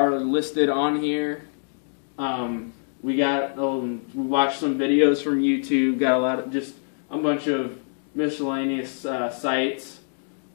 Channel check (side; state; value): right; silent; digital silence